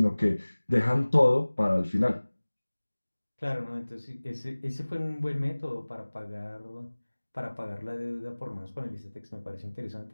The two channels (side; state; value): both; inverted; correlation -1.00